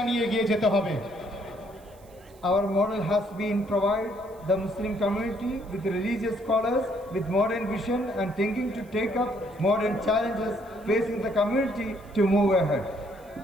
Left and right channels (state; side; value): noise; right; hiss, 29 dB below the sound